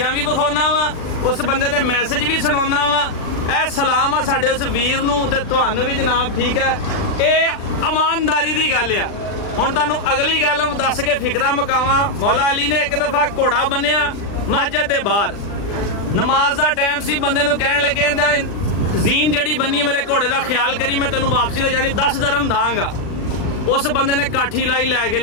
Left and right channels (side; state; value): right; late; 39 ms